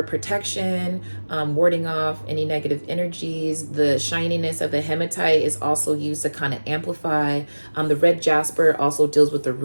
protection, warding off any negative energies. The shininess of the hematite is also used to kind of amplify. The red jasper also deals with the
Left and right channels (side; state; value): both; inverted; correlation -1.00